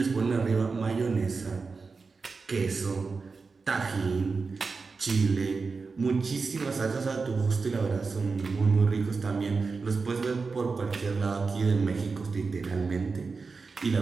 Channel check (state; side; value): quieter; left; 4.5 dB